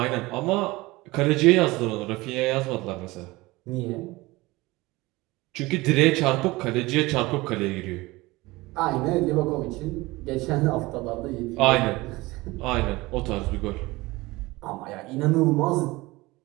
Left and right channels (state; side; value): quieter; left; 21.1 dB